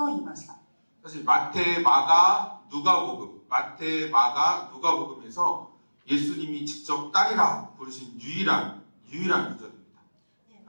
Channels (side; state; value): both; inverted; correlation -1.00